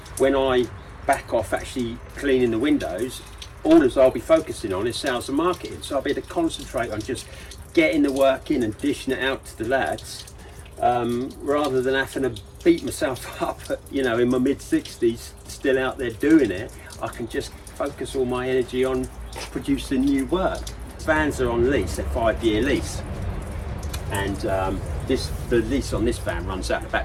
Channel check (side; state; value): both; identical; correlation 1.00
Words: when I back off actually cleaning the windows, all as I'll be focusing on is sales and marketing. So I'll be able to concentrate on just getting the work in and dishing it out to the lads, rather than having to beat myself up, you know, in my mid-60s, still out there doing it. I can just focus all my energy on producing new work. Vans are on lease, they're 5-year lease. And the lease on this van runs out in